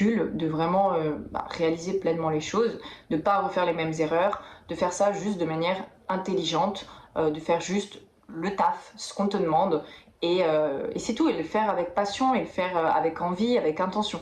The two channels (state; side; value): identical; both; correlation 1.00